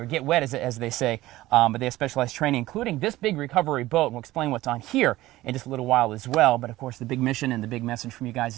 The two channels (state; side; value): quieter; left; 16.9 dB